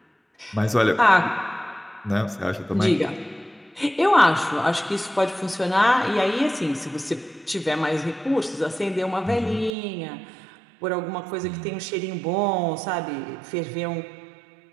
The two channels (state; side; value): drops out; left; at 9.7 s